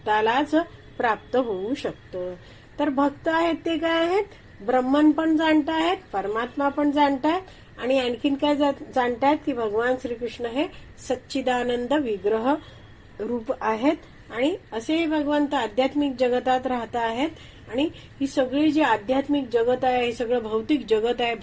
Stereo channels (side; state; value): both; identical; correlation 1.00